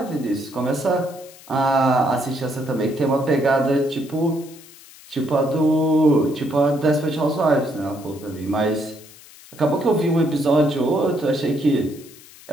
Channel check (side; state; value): left; noise; hiss, 21 dB below the sound